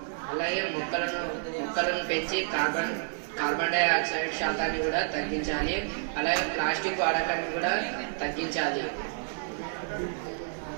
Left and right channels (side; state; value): left; silent; digital silence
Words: అలాగే మొక్కలను పెంచి కార్బన్ డైఆక్సైడ్ శాతాన్ని కూడా తగ్గించాలి. అలాగే ప్లాస్టిక్ వాడకాన్ని కూడా తగ్గించాలి.